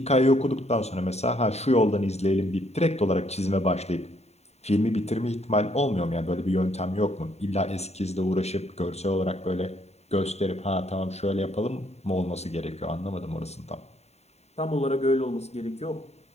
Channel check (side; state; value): right; late; 0.31 ms